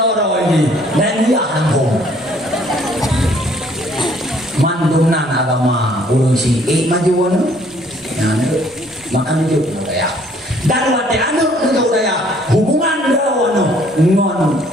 ini dan dia hantum. Mandumnan agama urusi maju anu. Nah, makan itu ya. Dan wate anu itu ya hubungan dawan ngon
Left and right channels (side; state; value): both; normal; correlation 0.61